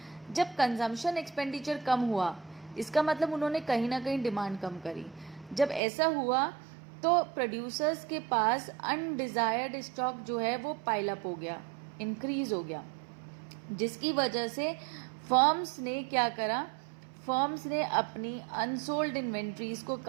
जब कंजम्पशन एक्सपेंडिचर कम हुआ, इसका मतलब उन्होंने कहीं ना कहीं डिमांड कम करी. जब ऐसा हुआ तो प्रोड्यूसर्स के पास अनडिजायर्ड स्टॉक जो है वो पाइल अप हो गया, इंक्रीज हो गया, जिसकी वजह से फर्म्स ने क्या करा, फर्म्स ने अपनी अनसोल्ड इन्वेंट्रीज को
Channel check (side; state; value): left; drops out; at 5.8 s